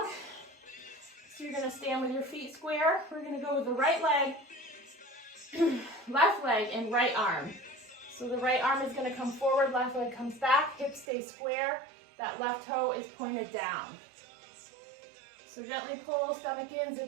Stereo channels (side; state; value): left; drops out; at 11.1 s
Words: So you're going to stand with your feet square. We're going to go with the right leg, left leg, and right arm. So the right arm is going to come forward, left leg comes back, hips stay square, that left toe is pointed down. So gently pull stomach in,